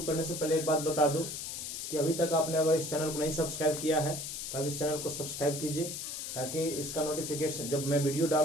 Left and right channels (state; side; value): noise; left; hiss, 6 dB below the sound